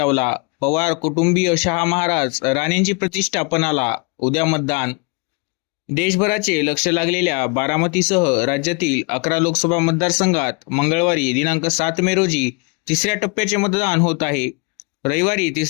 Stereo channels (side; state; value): right; quieter; 30.5 dB